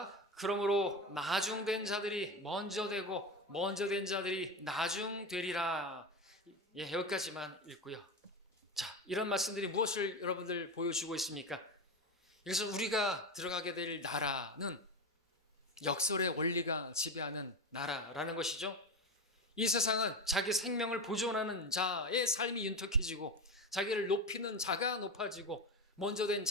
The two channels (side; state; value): both; normal; correlation 0.20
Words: 그러므로 나중된 자들이 먼저 되고 먼저 된 자들이 나중되리라. 예, 여기까지만 읽고요. 자, 이런 말씀들이 무엇을 여러분들 보여주고 있습니까? 그래서 우리가 들어가게 될 나라는 역설의 원리가 지배하는 나라라는 것이죠. 이 세상은 자기 생명을 보존하는 자의 삶이 윤택해지고 자기를 높이는 자가 높아지고 먼저 된